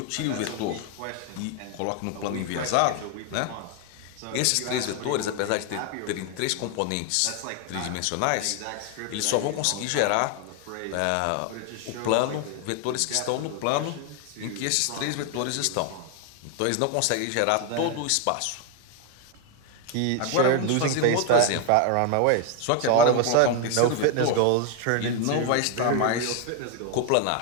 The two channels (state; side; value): different; both; correlation 0.01